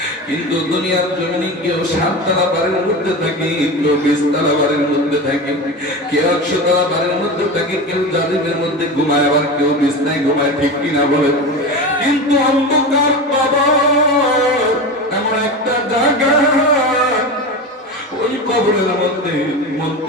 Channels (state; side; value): normal; both; correlation 0.25